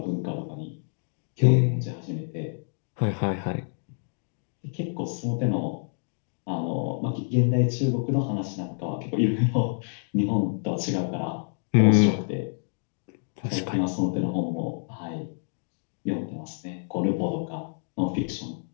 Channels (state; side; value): silent; right; digital silence